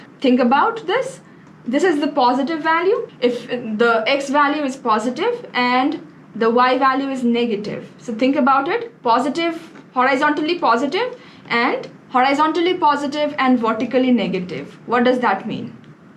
Think about this. This is the positive value. If the x value is positive and the y value is negative. So think about it. Positive, horizontally positive and vertically negative. What does that mean?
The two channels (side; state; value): both; identical; correlation 1.00